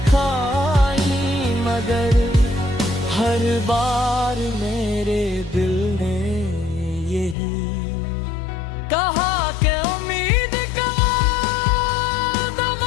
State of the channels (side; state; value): right; drops out; at 7.4 s